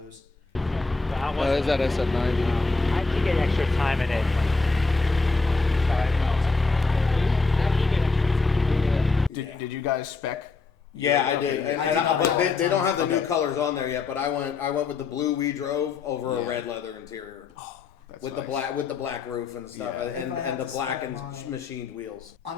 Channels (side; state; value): right; quieter; 4.1 dB